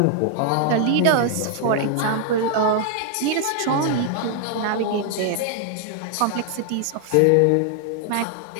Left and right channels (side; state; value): both; different; correlation 0.00